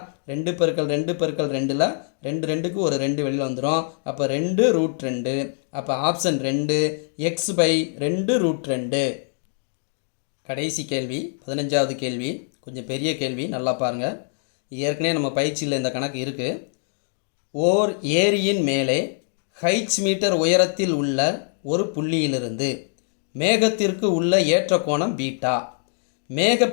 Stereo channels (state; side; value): silent; right; digital silence